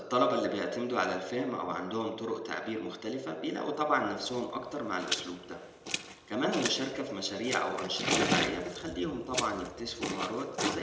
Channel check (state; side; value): identical; both; correlation 1.00